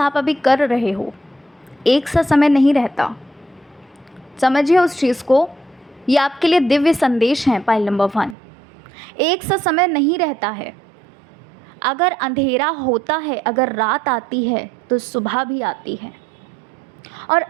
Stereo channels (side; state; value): left; drops out; at 8.3 s